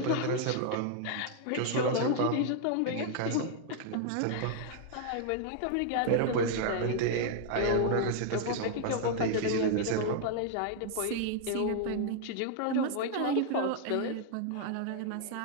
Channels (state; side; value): different; both; correlation -0.01